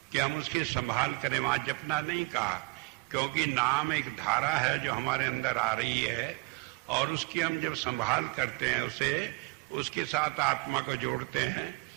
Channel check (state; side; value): quieter; left; 27.4 dB